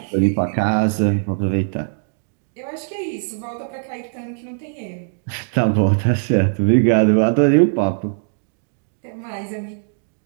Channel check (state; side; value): silent; left; digital silence